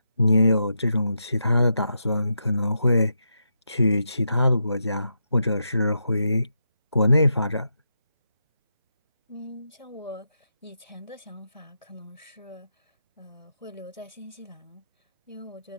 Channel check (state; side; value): inverted; both; correlation -0.84